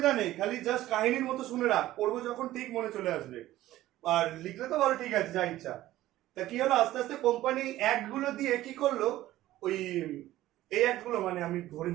নেই, খালি জাস্ট কাহিনীর মতো শুনে রাখ, পড়বো যখন ঠিক মনে চলে আসবে। আর লিখলে তো ভালো, ঠিক আছে, যা ইচ্ছা। তা কি হলো? আস্তে আস্তে কোম্পানি অ্যাক্ট গুলো দিয়ে কি করলো, ওই এই অ্যাক্ট গুলো মানে আমি ধরে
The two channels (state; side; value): quieter; left; 15.1 dB